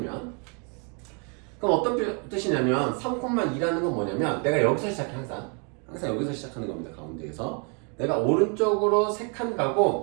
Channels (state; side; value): quieter; left; 36.8 dB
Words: 그럼 어떤 뜻이냐면 3,2라는 건 뭐냐면 내가 여기서 시작해. 항상 여기서 시작하는 겁니다. 가운데에서 내가 오른쪽으로 3칸